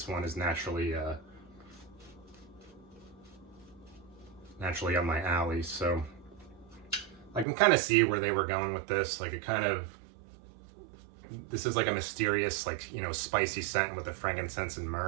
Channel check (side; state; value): left; drops out; at 7.5 s